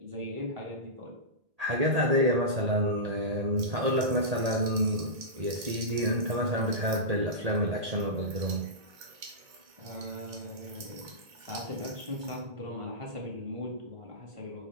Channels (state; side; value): late; left; 2.2 ms